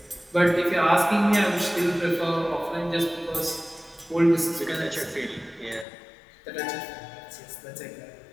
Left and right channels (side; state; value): right; drops out; at 5.9 s